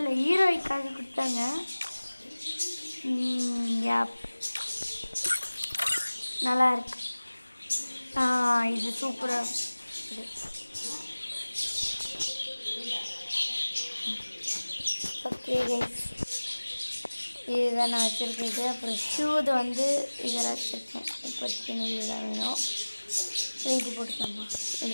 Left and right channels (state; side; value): inverted; both; correlation -1.00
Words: ஹீரோய்க்காக கொடுத்தாங்க. நல்லா இருக்கு. இது சூப்பராக இது. ஓகே கைஸ், இதுதான் நான் வச்சுருக்கேன். அப்புறம் ஷூது இதெல்லாம் வச்சுருக்கேன். இப்போதைக்கு இதுதான் வேணும். இது போட்டுக்கோங்க,